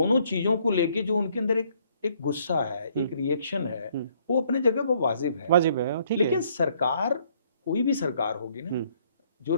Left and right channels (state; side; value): inverted; both; correlation -0.66